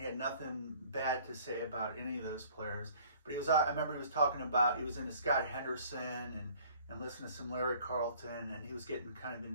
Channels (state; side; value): inverted; both; correlation -0.54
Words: had nothing bad to say about any of those players. But I remember he was talking about, he was into Scott Henderson and listening to some Larry Carlton, and he was getting kind of